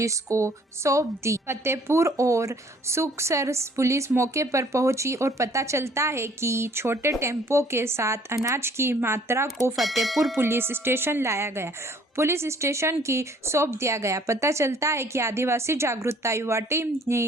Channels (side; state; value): both; normal; correlation 0.58